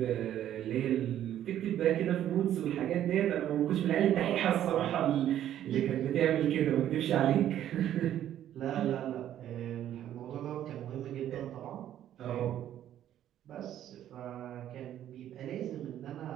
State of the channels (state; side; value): quieter; left; 11.4 dB